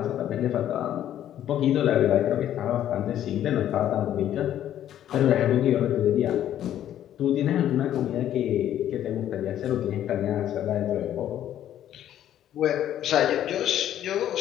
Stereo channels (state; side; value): quieter; right; 11.3 dB